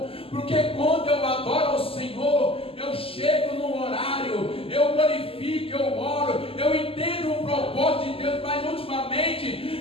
Porque quando eu adoro ao Senhor, eu chego no horário, eu glorifico, eu oro, eu entendo o propósito de Deus. Mas ultimamente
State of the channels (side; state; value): right; late; 0.27 ms